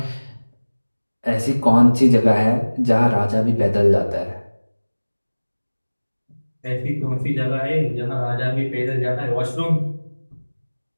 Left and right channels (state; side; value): inverted; both; correlation -1.00